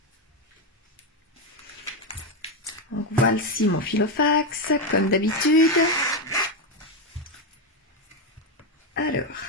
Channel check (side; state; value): both; normal; correlation 0.08